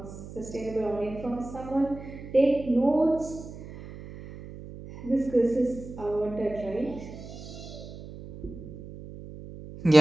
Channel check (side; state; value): right; noise; hum, 13 dB below the sound